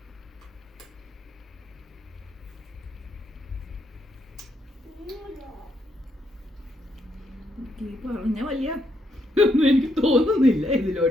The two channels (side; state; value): both; normal; correlation 0.76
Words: പറഞ്ഞ വലിയ ഒന്നും എനിക്ക് തോന്നുന്നില്ല